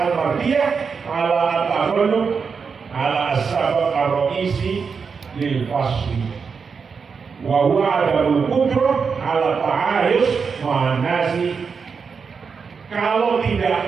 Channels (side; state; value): left; quieter; 5.6 dB